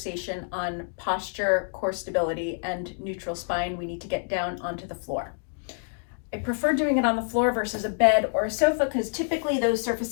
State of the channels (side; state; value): right; silent; digital silence